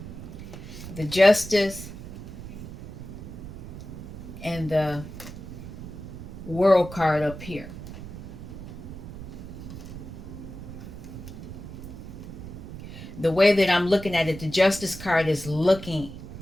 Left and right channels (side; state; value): right; noise; rumble, 11 dB below the sound